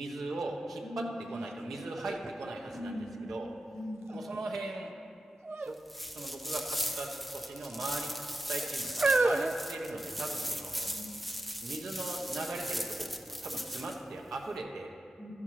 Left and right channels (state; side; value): normal; both; correlation 0.90